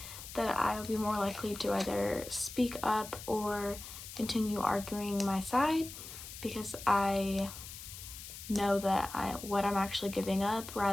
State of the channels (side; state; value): left; noise; hiss, 12 dB below the sound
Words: that I will be more likely to either speak up or continue arguing my side, because I know that what I'm actually giving up,